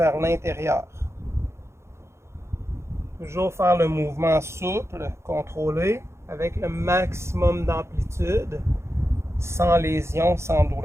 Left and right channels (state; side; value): late; left; 0.13 ms